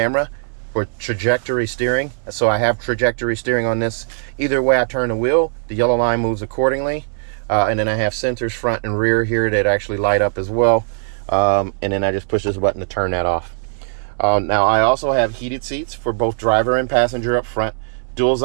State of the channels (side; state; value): left; silent; 62 dB below the other